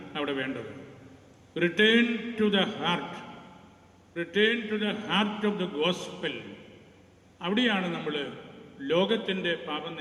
അവിടെ വേണ്ടത്. Return to the heart, return to the heart of the gospel. അവിടെയാണ് നമ്മൾ ലോകത്തിൻ്റെ പാപം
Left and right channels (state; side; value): identical; both; correlation 1.00